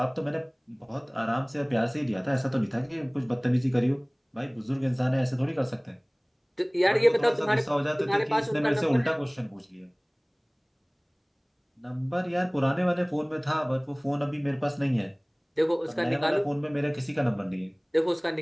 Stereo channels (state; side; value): identical; both; correlation 1.00